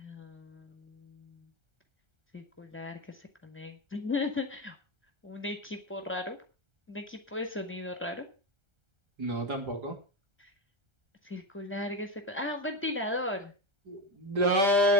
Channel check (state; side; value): late; left; 1.3 ms